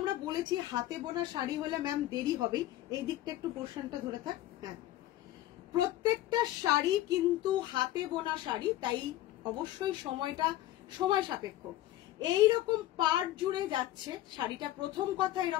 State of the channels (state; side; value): quieter; right; 14.8 dB